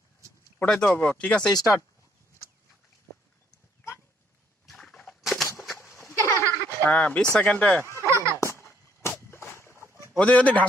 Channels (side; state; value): both; normal; correlation 0.68